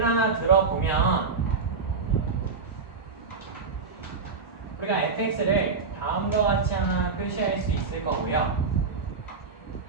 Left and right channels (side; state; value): left; quieter; 4.7 dB